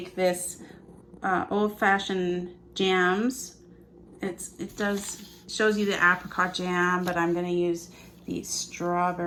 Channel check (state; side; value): identical; both; correlation 1.00